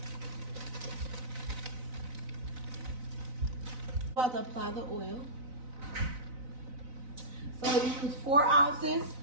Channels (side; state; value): left; late; 4.0 ms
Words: About to apply the oil. So we use 4 ounces.